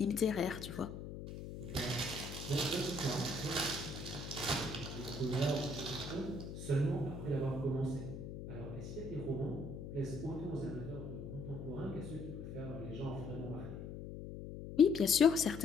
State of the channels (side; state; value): left; noise; hum, 9 dB below the sound